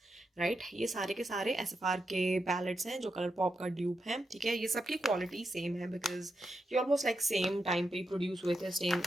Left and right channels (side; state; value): both; normal; correlation 0.86